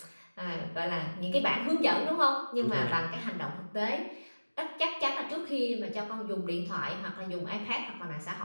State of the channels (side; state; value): both; inverted; correlation -1.00